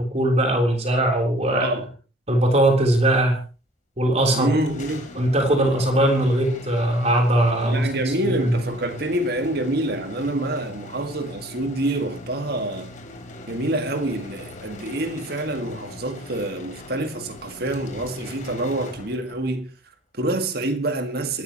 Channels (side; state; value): both; normal; correlation 0.52